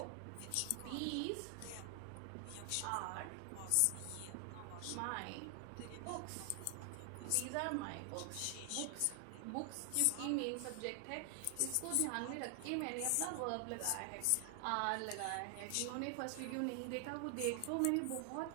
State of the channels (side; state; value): both; different; correlation 0.00